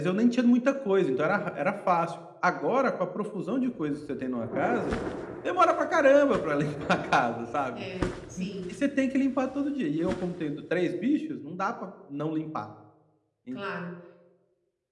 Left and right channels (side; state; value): both; identical; correlation 1.00